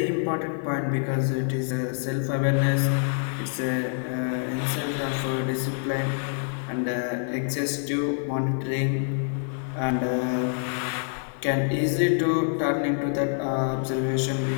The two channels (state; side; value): silent; right; digital silence